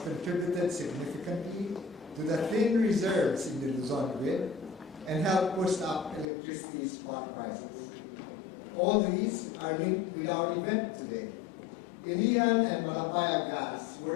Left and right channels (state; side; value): drops out; right; at 6.2 s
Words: significantly to the thin reserves in the Luzon grid and helped push up electricity spot prices. All these are linked with our event today. Ilian and Malampaya gas